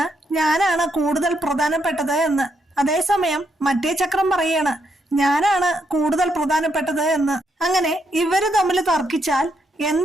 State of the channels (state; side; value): normal; both; correlation 0.77